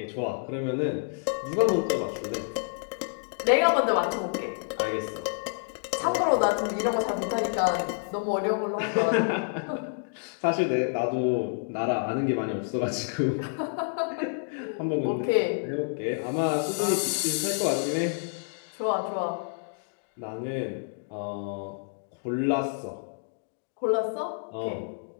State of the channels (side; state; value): right; silent; digital silence